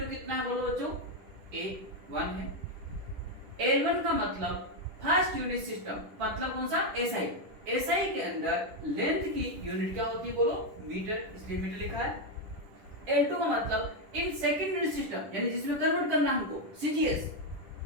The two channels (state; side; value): late; left; 10 ms